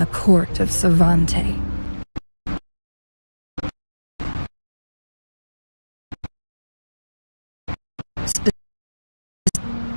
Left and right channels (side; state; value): both; inverted; correlation -1.00